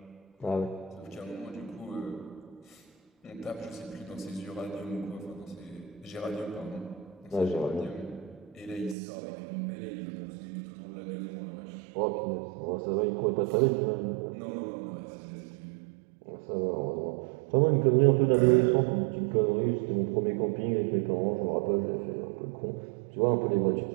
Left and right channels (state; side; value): drops out; left; at 9.0 s